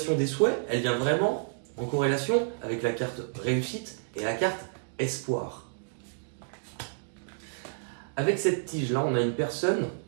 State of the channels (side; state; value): left; silent; digital silence